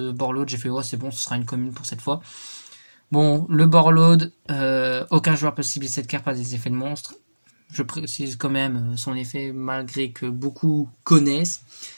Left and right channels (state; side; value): inverted; both; correlation -1.00